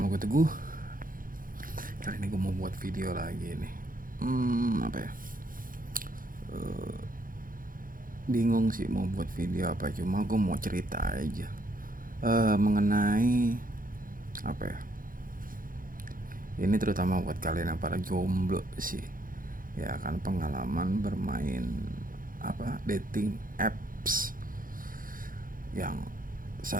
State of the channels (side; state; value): left; late; 0.40 ms